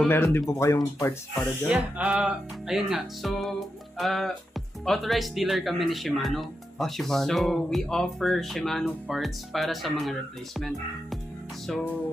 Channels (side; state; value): both; normal; correlation 0.87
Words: meron din po kayong parts para dyan? Yeah, ayun nga. So, authorized dealer kami ni Shimano. Shimano. So, we offer Shimano parts para sa mga replacement.